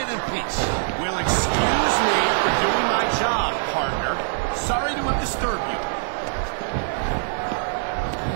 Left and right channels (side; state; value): left; silent; digital silence